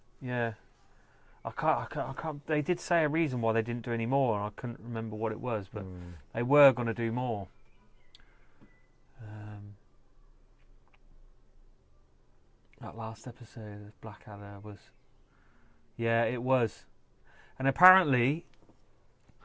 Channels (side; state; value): both; identical; correlation 1.00